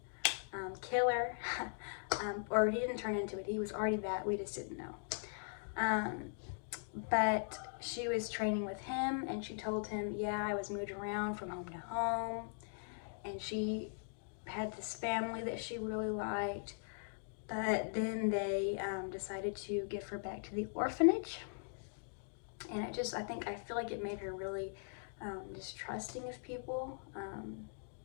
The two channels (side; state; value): right; silent; digital silence